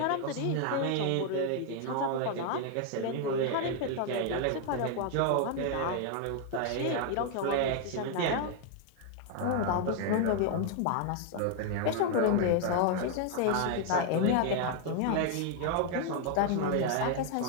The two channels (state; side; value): different; both; correlation 0.00